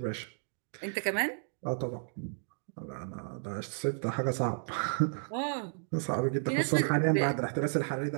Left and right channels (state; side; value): silent; left; digital silence